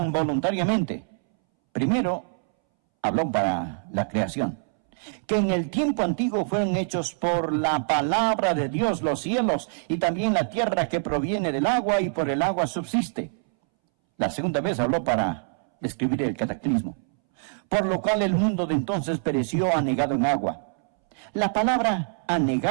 voluntariamente. Primero, habló para la creación. Que en el tiempo antiguo fueron hechos por la palabra de Dios los cielos y también la tierra que proviene del agua y por el agua subsiste. La segunda vez habló para describir el cataclismo. Por lo cual el mundo de entonces pereció anegado en agua. La palabra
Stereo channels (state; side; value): silent; left; 62 dB below the other